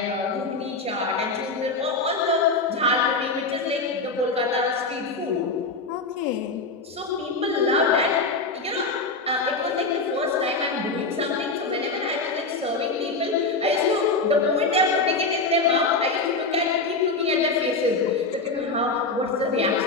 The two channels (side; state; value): right; quieter; 3.6 dB